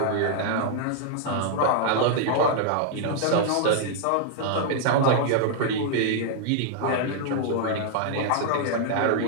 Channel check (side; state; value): both; different; correlation -0.01